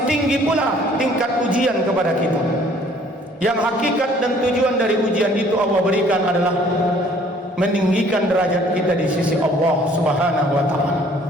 tinggi pula tingkat ujian kepada kita. Yang hakikat dan tujuan dari ujian itu Allah berikan adalah meninggikan derajat kita di sisi Allah Subhanahu wa taala.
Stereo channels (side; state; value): both; normal; correlation 0.57